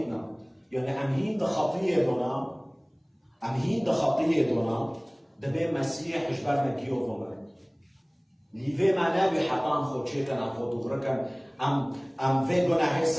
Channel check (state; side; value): identical; both; correlation 1.00